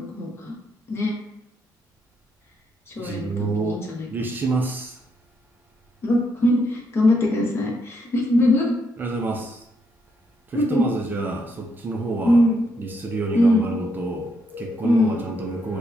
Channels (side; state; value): both; normal; correlation 0.76